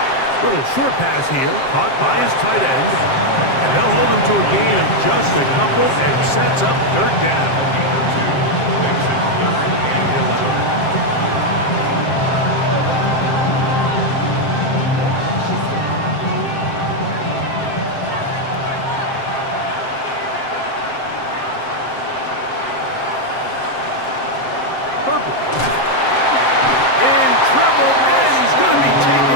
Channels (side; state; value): right; late; 7.6 ms